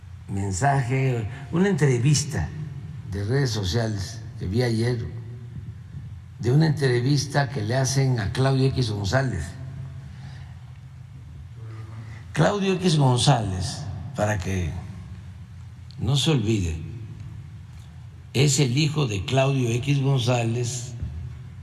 mensaje, una entrevista de redes sociales que vi ayer, de una entrevista que le hacen a Claudio X González. Claudio X González, para que no se olvide, es el hijo de Claudio X González,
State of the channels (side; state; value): both; identical; correlation 1.00